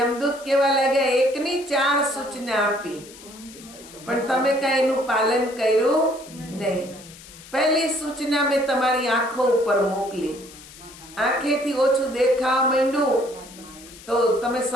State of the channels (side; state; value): left; noise; hiss, 19 dB below the sound